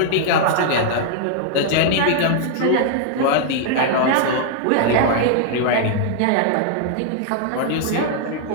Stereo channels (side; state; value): both; different; correlation -0.01